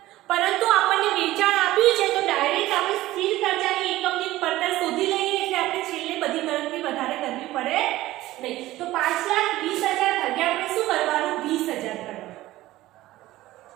પરંતુ આપણને વેચાણ આપ્યું છે તો ડાયરેક્ટ આપણે સ્થિર ખર્ચાની એકમની પડતર શોધી લઈએ એટલે આપણે છેલ્લે બધી ગણતરી વધારે કરવી પડે નહીં. તો 5,20,000 ભાગ્યા આપણે શું કરવાનું? 20,000 કરવાનું.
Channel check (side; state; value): left; quieter; 16.4 dB